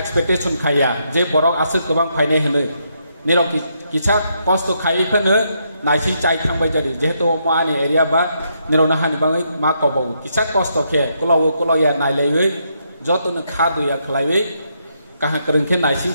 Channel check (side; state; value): both; inverted; correlation -0.77